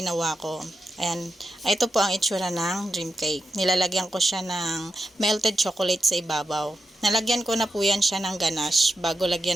ko. Ayan, ito po ang itsura ng dream cake. Nilalagyan ko siya ng melted chocolate sa ibabaw. Nalagyan ko na po yan siya ng ganache bago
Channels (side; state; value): both; normal; correlation 0.88